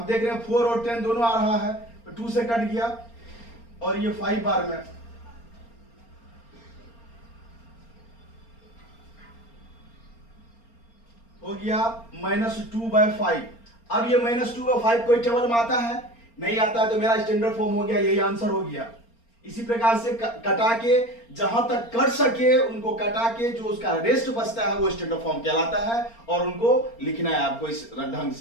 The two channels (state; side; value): late; right; 4.3 ms